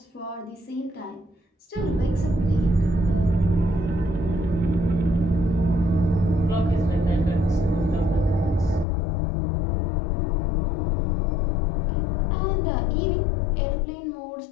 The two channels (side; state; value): right; drops out; at 8.8 s